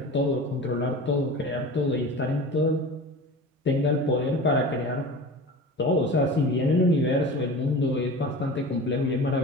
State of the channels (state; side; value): normal; both; correlation 0.35